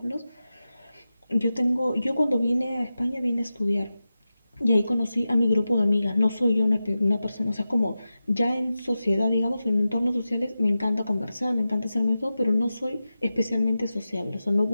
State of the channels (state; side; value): inverted; both; correlation -0.93